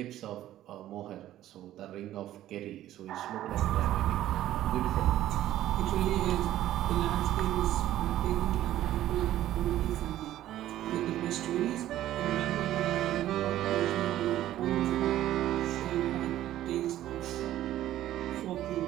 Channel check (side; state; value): left; quieter; 13.3 dB